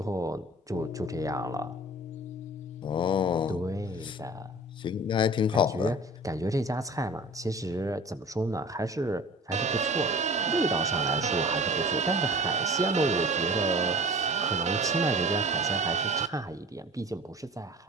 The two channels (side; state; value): both; normal; correlation 0.42